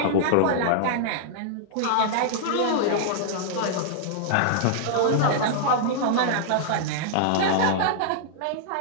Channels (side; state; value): both; different; correlation -0.01